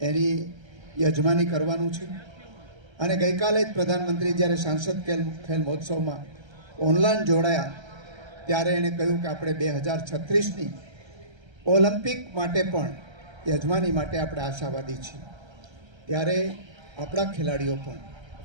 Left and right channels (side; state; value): left; late; 1.3 ms